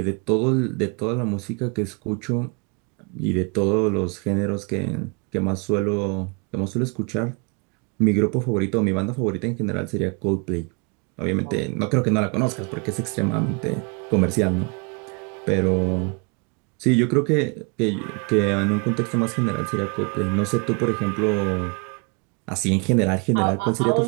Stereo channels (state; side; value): quieter; left; 33.0 dB